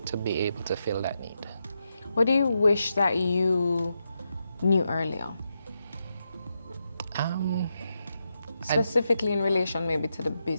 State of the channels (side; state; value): both; inverted; correlation -0.85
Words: to be able to fill that need. What do you wish that you knew earlier? Specifically in relation maybe to the